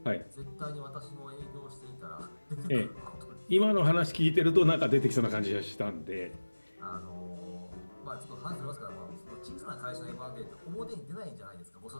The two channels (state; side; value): inverted; both; correlation -1.00